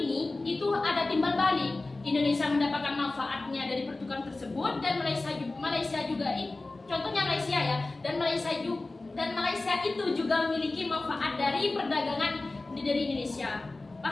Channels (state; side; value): quieter; right; 3.2 dB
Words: itu ada timbal balik. Indonesia mendapatkan manfaatnya dari pertukaran tersebut, dan Malaysia juga contohnya Malaysia ya, dan Malaysia itu juga memiliki manfaat dari perdagangan dari Indonesia.